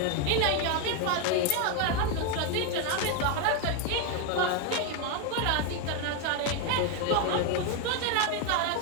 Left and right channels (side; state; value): both; different; correlation 0.01